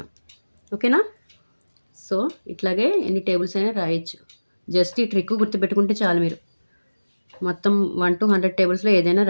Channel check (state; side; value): inverted; both; correlation -1.00